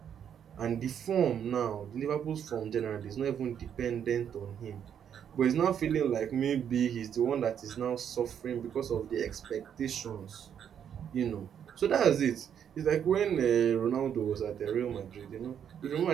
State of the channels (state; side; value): quieter; left; 8.7 dB